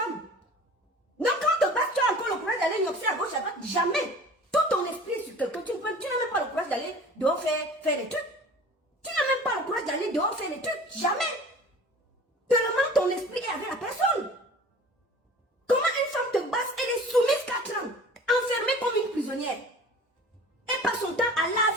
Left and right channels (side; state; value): both; normal; correlation 0.43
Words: Donc quand te basse, tu as encore le courage d'aller gnoxer à gauche, à droite. Jamais. Tout ton esprit est sur quelqu'un. Tu n'as même pas le courage d'aller dehors faire des trucs. Tu n'as même pas le courage d'aller dehors faire des trucs. Jamais. Tellement ton esprit est avec la personne. Comment une femme te basse, elle est soumise 4 ans, enfermée comme une prisonnière. Elle passe son temps à